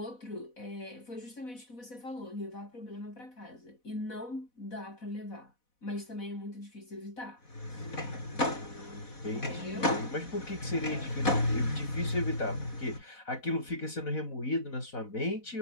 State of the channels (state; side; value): late; right; 4.1 ms